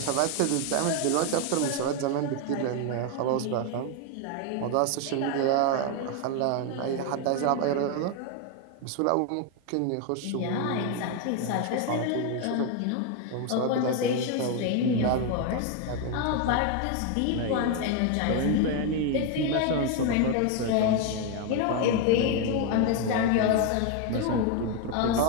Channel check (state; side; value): different; both; correlation 0.01